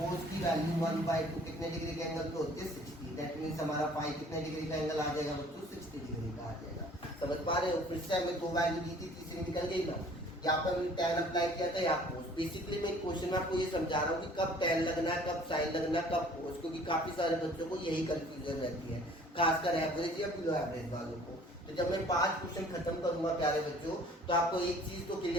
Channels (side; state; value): both; normal; correlation 0.53